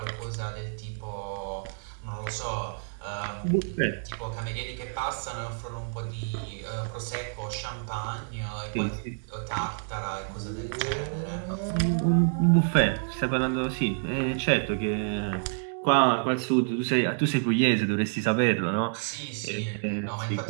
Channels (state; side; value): silent; left; digital silence